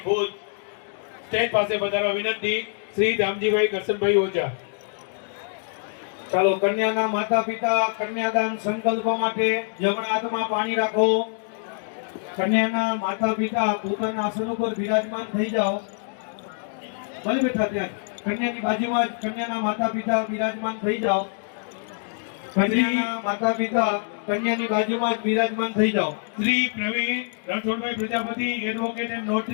ભુજ સ્ટેજ પાસે પધારવા વિનંતી. શ્રી દામજીભાઈ કરશનભાઈ ઓઝા. ચાલો કન્યાના માતા પિતા કન્યાદાન સંકલ્પ માટે જમણા હાથમાં પાણી રાખો. કન્યાના માતા પિતા પોતાના આસન ઉપર બિરાજમાન થઈ જાઓ. ભલે બેઠા ત્યાં કન્યાની બાજુમાં જ કન્યાના માતા પિતા બિરાજમાન થઈ જાઓ. કન્યાના માતા પિતા કન્યાની બાજુમાં જ બિરાજમાન થઈ જાઓ. Shri Pravin Ranchhodbhai Prajapati advocate and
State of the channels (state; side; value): silent; right; digital silence